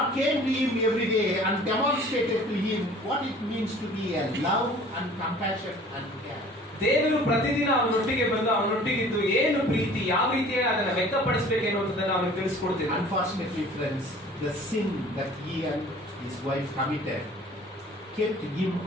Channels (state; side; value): normal; both; correlation 0.48